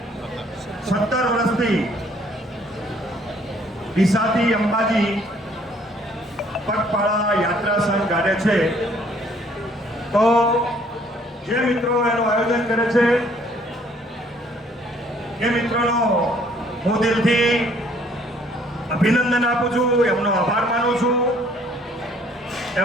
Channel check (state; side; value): normal; both; correlation 0.61